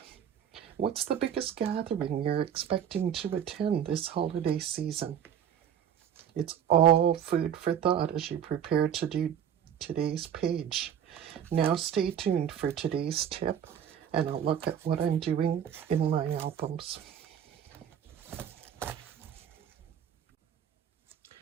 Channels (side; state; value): left; quieter; 9.1 dB